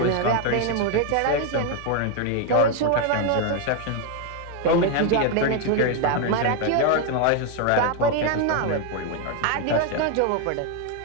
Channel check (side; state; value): both; different; correlation 0.01